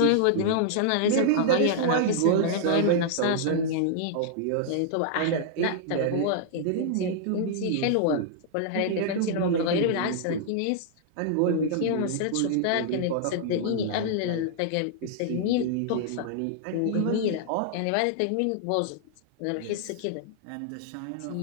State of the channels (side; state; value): both; different; correlation -0.01